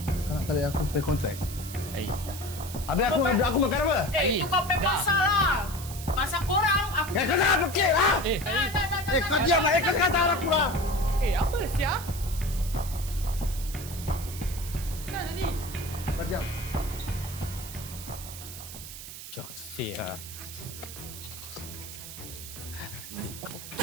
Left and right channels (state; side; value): noise; right; hiss, 12 dB below the sound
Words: Kau nak tarik aku pay kontrak? Habis aku makan apa? Itu kau pay pasal lah. Pasal korang, aku... Kau jangan fikir lah! Kau diam lah! Kau kata aku lah! Apa sia? Kenapa tadi? Kau diam. Joksi lah.